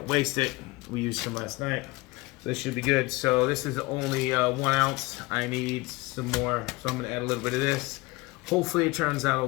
waste it. We used some last night. This should be good. So this is only 1 ounce. I need some more, so I'm gonna add a little bit of this. Hopefully it turns out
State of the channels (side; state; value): right; quieter; 22.5 dB